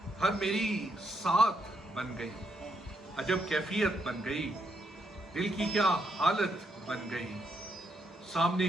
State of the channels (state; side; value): normal; both; correlation 0.77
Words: हर मेरी साथ बन गई। अजब कैफियत बन गई, दिल की क्या हालत बन गई। सामने